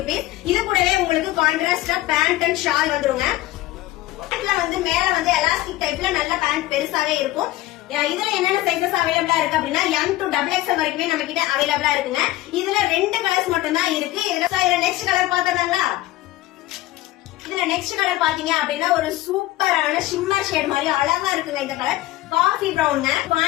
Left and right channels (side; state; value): right; quieter; 16.6 dB